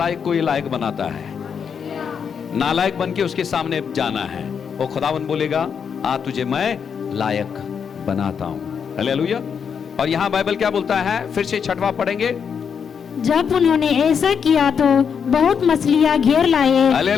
को ये लायक बनाता है, नालायक बन के उसके सामने जाना है। वो खुदावन बोलेगा, आ तुझे मैं लायक बनाता हूं। हालेलुया। और यहां बाइबल क्या बोलता है, फिर से छठवां पढ़ेंगे। जब उन्होंने ऐसा किया तो बहुत मछलियां घेर लाए।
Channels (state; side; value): quieter; right; 6.9 dB